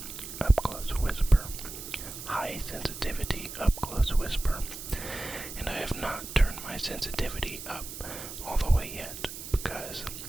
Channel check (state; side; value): noise; right; hiss, 10 dB below the sound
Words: high sensitivity up-close whisper. And I have not turned my sensitivity up all the way yet, because